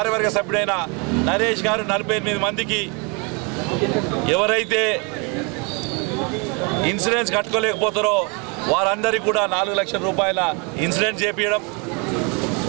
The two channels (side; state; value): left; quieter; 32.3 dB